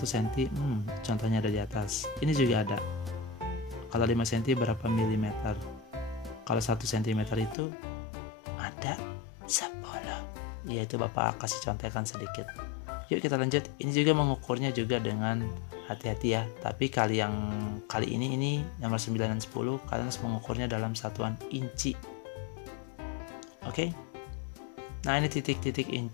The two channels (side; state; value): right; drops out; at 7.6 s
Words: cm? Contohnya ada di atas. Ini juga ada. Kalau 5 cm berapa milimeter? Kalau 1 cm itu ada 10. Ya, itu Bapak kasih contekan sedikit. Yuk kita lanjut. Ini juga mengukurnya juga dengan hati-hati ya. Tapi kali ini nomor 9 dan 10 kalian harus mengukurnya dalam satuan inci. Oke? Nah, ini titik-titik